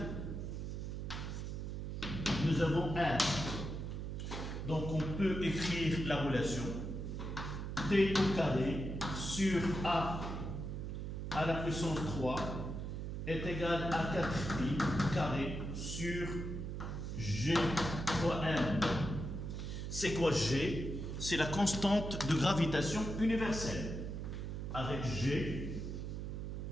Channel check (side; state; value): right; noise; hum, 5 dB below the sound